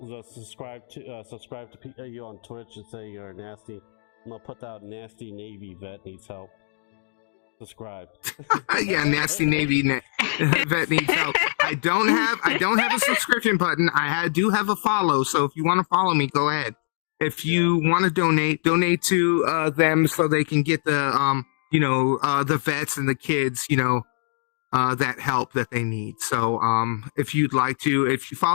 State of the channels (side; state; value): right; silent; digital silence